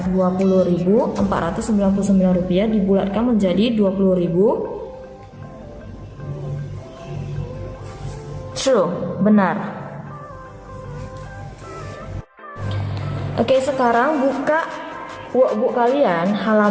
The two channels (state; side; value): identical; both; correlation 1.00